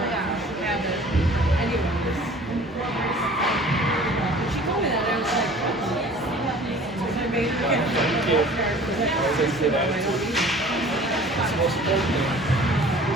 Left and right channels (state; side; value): normal; both; correlation 0.47